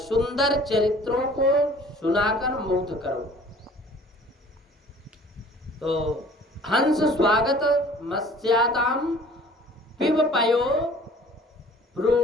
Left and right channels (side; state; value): both; normal; correlation 0.50